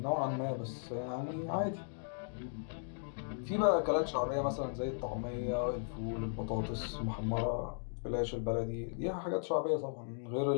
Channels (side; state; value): right; silent; digital silence